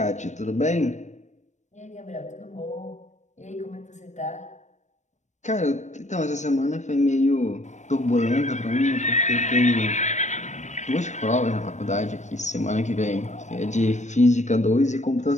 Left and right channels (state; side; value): late; right; 0.34 ms